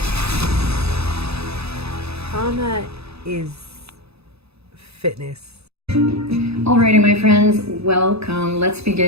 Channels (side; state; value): left; late; 0.79 ms